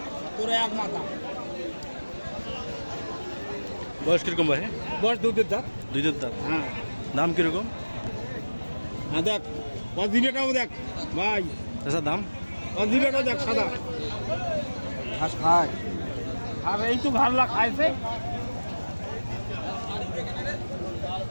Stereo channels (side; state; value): both; inverted; correlation -1.00